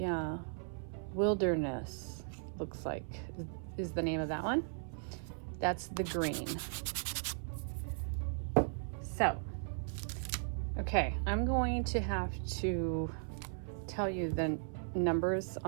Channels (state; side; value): silent; left; 53 dB below the other